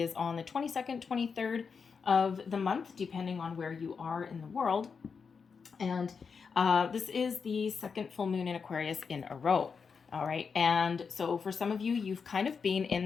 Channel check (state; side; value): quieter; right; 5.7 dB